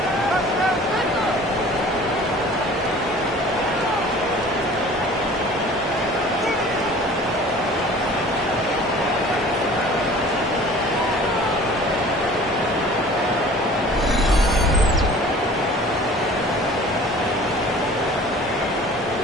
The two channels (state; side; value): normal; both; correlation 0.46